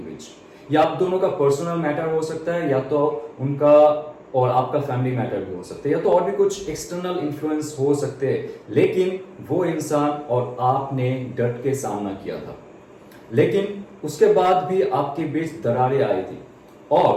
या आप दोनों का पर्सनल मैटर हो सकता है, या तो उनका और आपका फैमिली मैटर भी हो सकता है, या तो और भी कुछ एक्सटर्नल इन्फ्लुएंस हो सकते हैं। लेकिन वो इंसान और आपने डट के सामना किया था, लेकिन उसके बाद भी आपके बीच दरारें आई थी।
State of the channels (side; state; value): both; identical; correlation 1.00